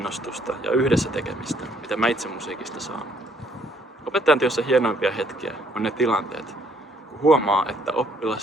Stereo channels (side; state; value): both; normal; correlation 0.66